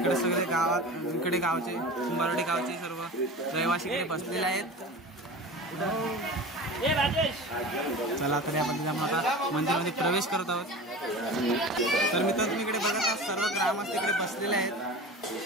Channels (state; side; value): normal; both; correlation 0.34